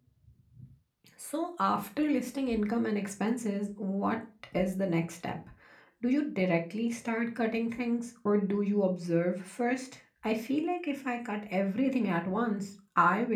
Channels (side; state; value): both; identical; correlation 1.00